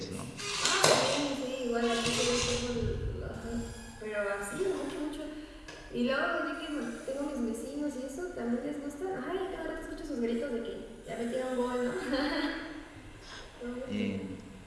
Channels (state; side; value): identical; both; correlation 1.00